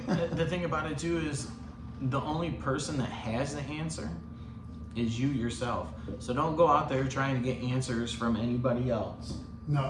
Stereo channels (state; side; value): identical; both; correlation 1.00